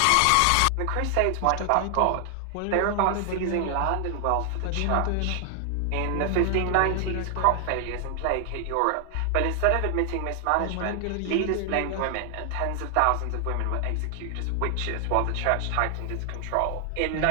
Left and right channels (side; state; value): both; different; correlation 0.00